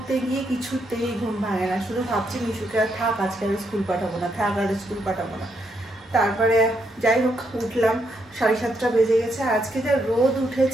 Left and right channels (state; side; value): normal; both; correlation 0.78